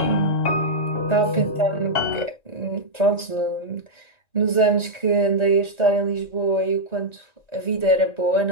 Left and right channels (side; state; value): right; late; 1.9 ms